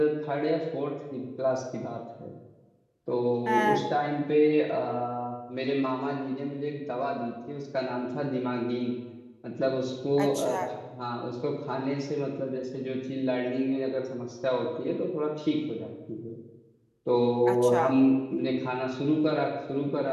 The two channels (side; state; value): both; identical; correlation 1.00